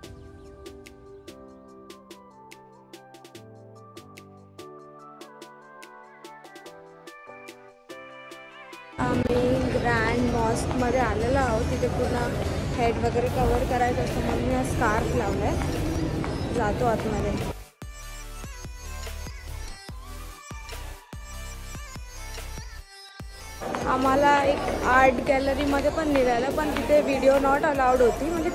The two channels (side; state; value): both; identical; correlation 1.00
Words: आम्ही ग्रँड मॉस्कमध्ये आलेलो आहोत. तिथे पूर्ण हेड वगैरे कवर करायचं असतं म्हणून मी हा स्कार्फ लावला आहे. जातो आतमध्ये. आम्हाला एक आर्ट गॅलरीमध्ये पण निघालं, पण तिथे व्हिडिओ नॉट अलाउड होती. म्हणजे